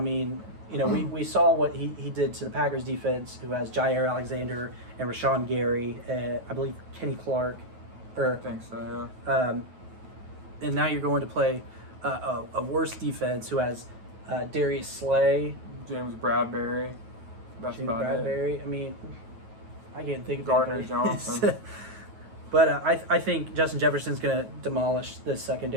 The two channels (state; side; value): late; left; 9.3 ms